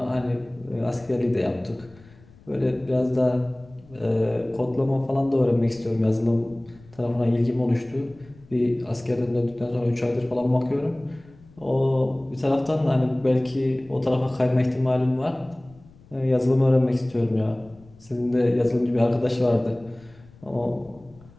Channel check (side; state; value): left; noise; rumble, 25 dB below the sound